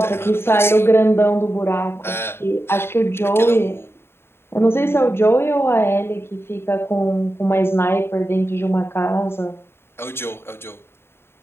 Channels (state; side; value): late; right; 0.11 ms